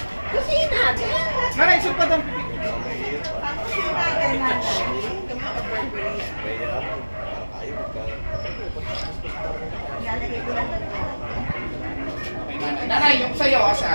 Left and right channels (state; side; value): inverted; both; correlation -1.00